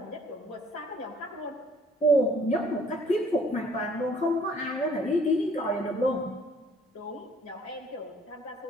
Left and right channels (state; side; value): normal; both; correlation 0.59